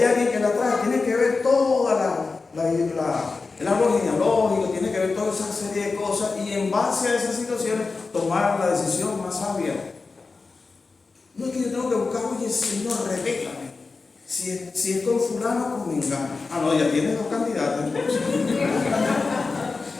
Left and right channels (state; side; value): quieter; right; 4.1 dB